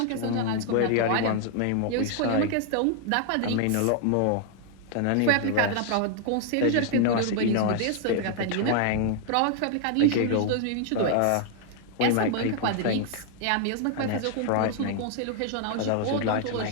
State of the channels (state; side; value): different; both; correlation 0.00